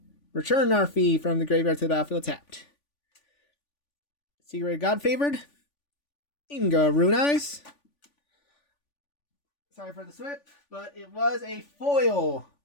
return Narfi from the graveyard to the battlefield tapped. Secret God Favored. Inga Rune Eyes. Sorry for the slip, but it was a foil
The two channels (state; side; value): late; right; 3.5 ms